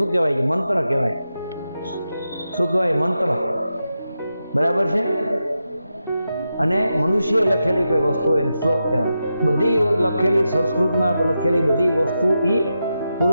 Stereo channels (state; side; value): inverted; both; correlation -0.88